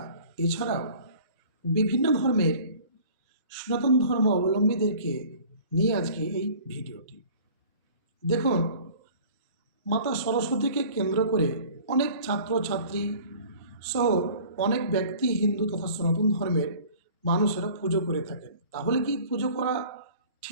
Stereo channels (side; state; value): both; inverted; correlation -0.47